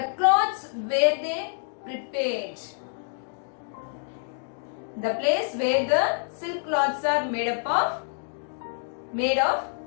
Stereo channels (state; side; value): silent; right; digital silence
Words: cloths where they prepared. The place where the silk cloths are made of,